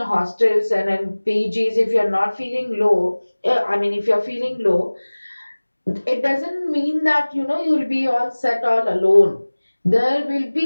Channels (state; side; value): inverted; both; correlation -1.00